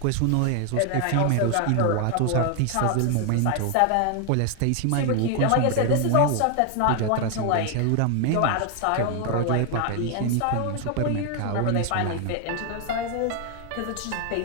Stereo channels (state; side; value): different; both; correlation 0.00